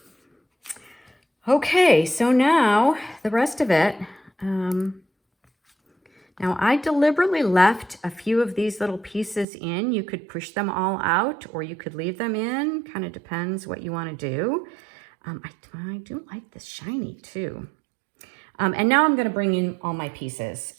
Okay, so now the rest of it. Now I deliberately left a few of these little pieces in. You could push them all out or you could leave them in. Kind of depends what you want to do. I do like this shiny too. And now I'm going to bring in all my pieces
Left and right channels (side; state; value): left; drops out; at 9.5 s